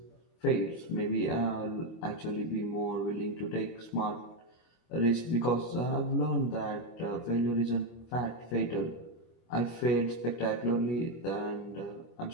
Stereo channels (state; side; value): late; right; 25 ms